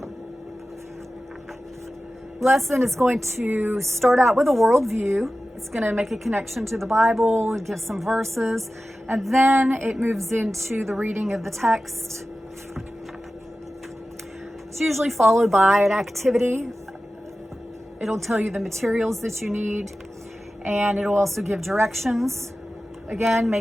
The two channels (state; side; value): normal; both; correlation 0.95